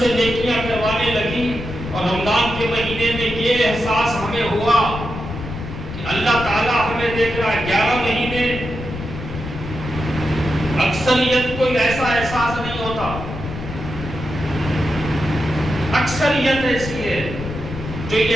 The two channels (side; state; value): left; noise; rumble, 9 dB below the sound